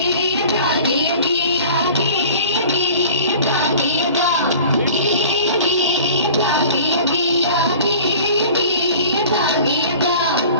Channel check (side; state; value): both; inverted; correlation -0.43